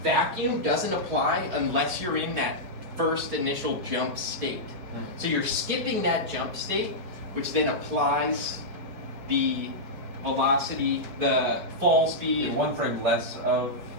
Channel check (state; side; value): late; left; 5.0 ms